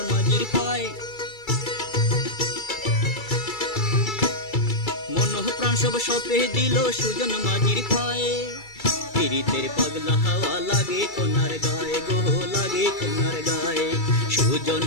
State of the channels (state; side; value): late; right; 2.3 ms